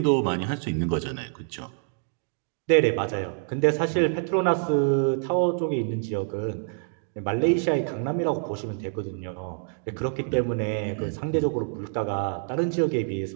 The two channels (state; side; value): silent; left; 61 dB below the other